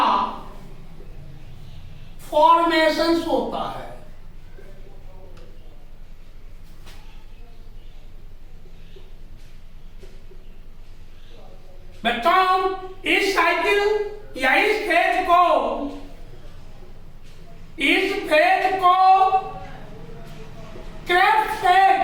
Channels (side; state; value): both; identical; correlation 1.00